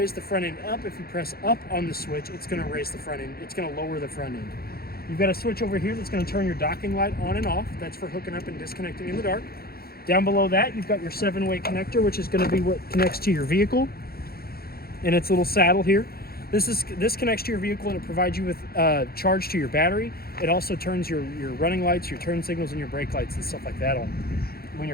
the front end up. If you press up on the switch, it's gonna raise the front end. It's gonna lower the front end. You've got a switch over here that's gonna turn your docking light on and off. That's for hooking up and disconnecting in the dark. Down below that, you've got your 7-way connector, which is gonna be what connects to your vehicle and its little saddle here. This connects to your vehicle and it provides you with charge to your battery. It also turns your running lights, your turn signals, and your brake lights and stuff like that on when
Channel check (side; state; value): right; late; 0.44 ms